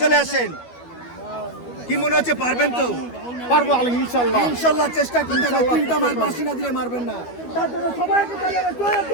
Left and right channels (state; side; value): late; right; 12 ms